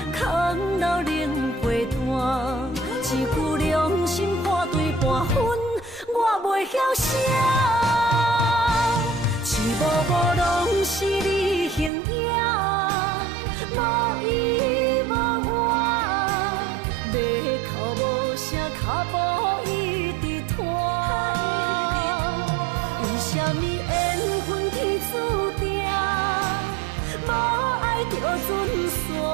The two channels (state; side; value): drops out; left; at 11.9 s